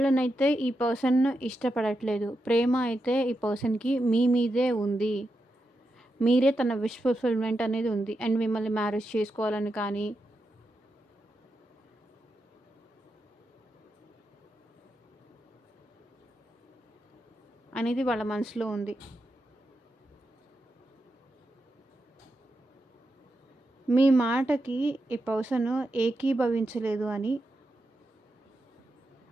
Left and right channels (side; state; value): both; normal; correlation 0.87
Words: ఈ పర్సన్ ఇష్టపడట్లేదు. ప్రేమ అయితే ఈ పర్సన్‌కి మీ మీదే ఉంది. మీరే తన విష్ ఫుల్‌ఫిల్‌మెంట్ అనేది ఉంది. అండ్ మిమ్మల్ని మ్యారేజ్ చేసుకోవాలని కానీ అనేది వాళ్ళ మనసులో ఉంది. మీ మాటకి ఈ పర్సన్ ఏకీభవించలేదు అని